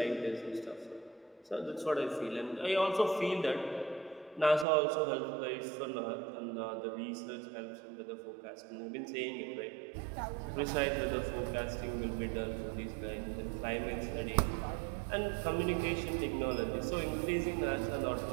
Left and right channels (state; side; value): drops out; left; at 4.7 s